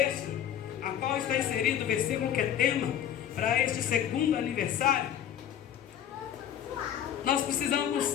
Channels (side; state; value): right; quieter; 10.2 dB